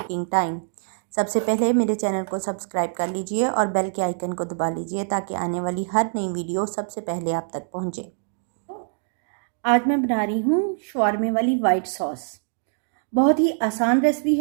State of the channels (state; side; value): silent; left; digital silence